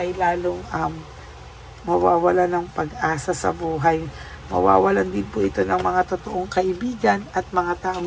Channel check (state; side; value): identical; both; correlation 1.00